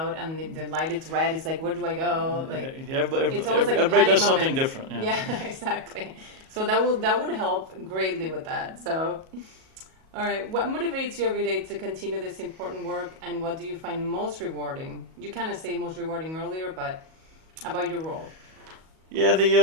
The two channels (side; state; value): left; late; 37 ms